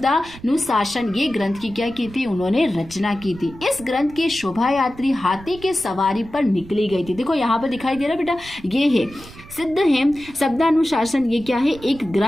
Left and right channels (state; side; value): noise; right; rumble, 18 dB below the sound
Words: ये ग्रंथ की क्या की थी, उन्होंने रचना की थी। इस ग्रंथ की शोभा यात्री हाथी के सवारी पर निकली गई थी। देखो यहाँ पर दिखाई दे रहा है बेटा, ये है सिद्धहेम शब्दानुशासन। ये क्या है, एक